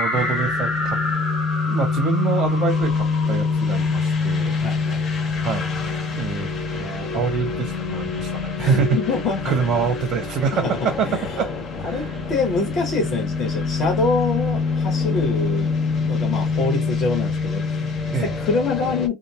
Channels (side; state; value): both; normal; correlation 0.50